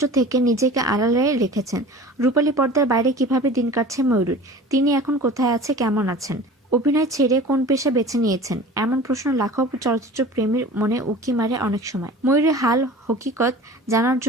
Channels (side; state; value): both; normal; correlation 0.40